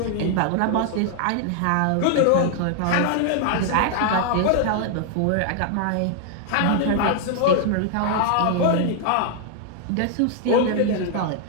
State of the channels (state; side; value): different; both; correlation 0.00